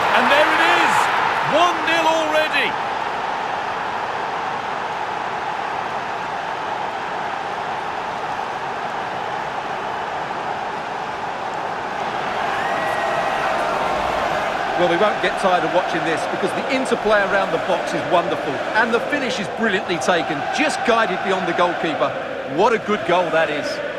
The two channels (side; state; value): both; identical; correlation 1.00